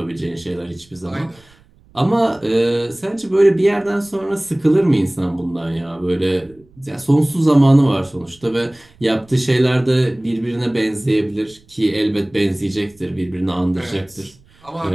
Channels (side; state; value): right; noise; rumble, 29 dB below the sound